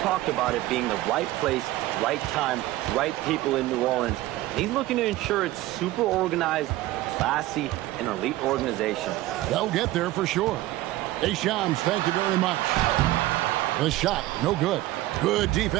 talked about it being the right place, right time, right people in New Orleans. He's looking to ensure it's super organized, classy, and elite organization. They'll get there for sure. Hey, Shams, thank you very much. The shot, no good. Good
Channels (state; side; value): quieter; left; 16.7 dB